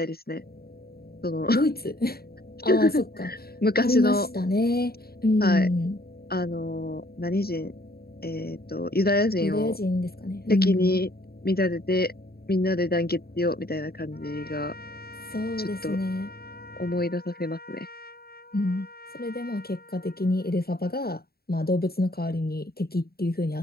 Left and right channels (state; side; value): late; right; 0.45 ms